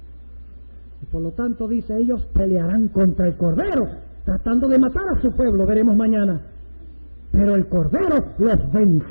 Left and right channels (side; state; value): both; inverted; correlation -1.00